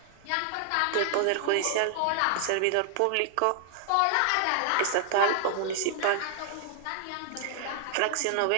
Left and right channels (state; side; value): different; both; correlation -0.01